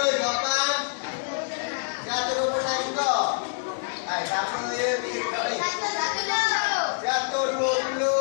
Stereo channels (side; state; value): right; silent; digital silence